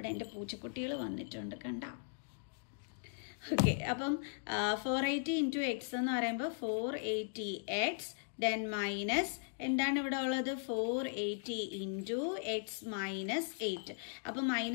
എൻ്റെ പൂച്ചക്കുട്ടികൾ വന്നിട്ടുണ്ട് കണ്ട. ഓക്കെ, അപ്പം 480 × x എന്ന് പറയുമ്പോൾ 480x ദെൻ മൈനസ് എന്താണ് ഇവിടെ ഉള്ളത്? 480 × x-8. അപ്പൊ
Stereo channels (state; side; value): silent; right; digital silence